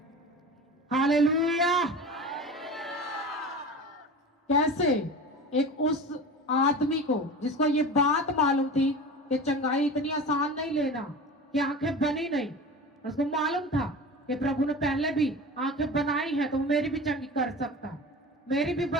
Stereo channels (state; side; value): normal; both; correlation 0.33